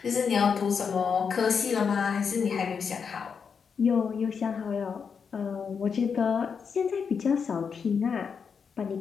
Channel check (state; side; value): quieter; right; 6.2 dB